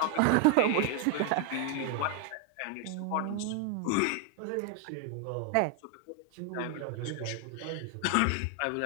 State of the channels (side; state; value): both; different; correlation 0.00